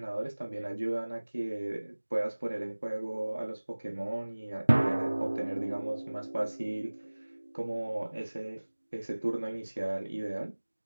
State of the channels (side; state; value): both; inverted; correlation -1.00